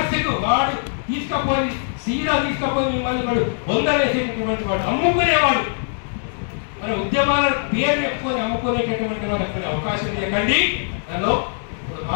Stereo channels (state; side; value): silent; right; 65 dB below the other